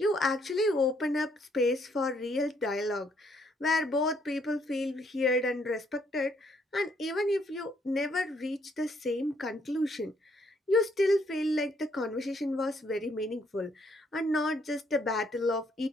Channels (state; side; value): normal; both; correlation 0.69